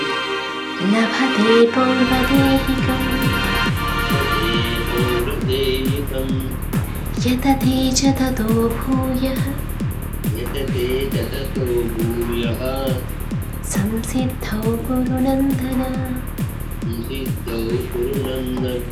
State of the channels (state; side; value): identical; both; correlation 1.00